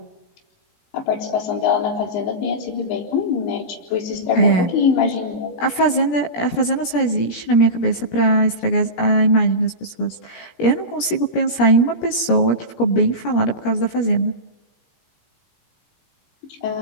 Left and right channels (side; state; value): right; late; 17 ms